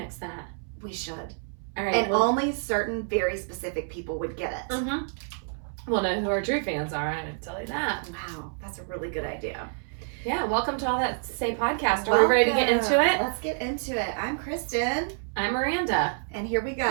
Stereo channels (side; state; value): left; silent; 60 dB below the other